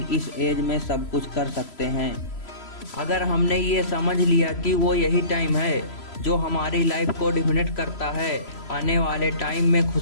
इस एज में सब कुछ कर सकते हैं। अगर हमने ये समझ लिया कि वो यही टाइम है जो हमारी लाइफ को डिफाइन करता है, आने वाले टाइम में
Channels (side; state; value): right; late; 3.0 ms